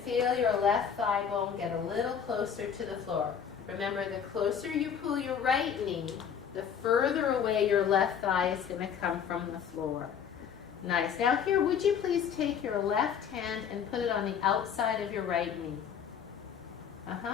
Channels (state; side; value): quieter; right; 7.7 dB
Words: your left thigh bone get a little closer to the floor. Remember, the closer you pull your right knee, the further away your left thigh is going to come from the floor. Nice. Now here, would you please take your left hand and put it on the outside of your right knee?